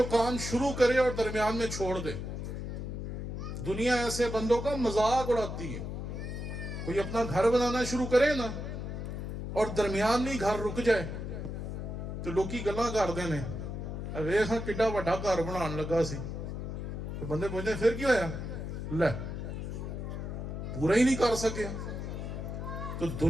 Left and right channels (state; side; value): noise; left; hum, 5 dB below the sound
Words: کام شروع کرے اور درمیان میں چھوڑ دے. دنیا ایسے بندوں کا مذاق اڑاتی ہے. کوئی اپنا گھر بنانا شروع کرے نا اور درمیان میں گھر رک جائے تو لوکی گلاں کر دینے ویکھ ہاں کڈا وڈا گھر بنان لگا سی. تو بندے پوچھتے پھر کی ہویا؟ لے پورا ہی نہیں کر سکے. تو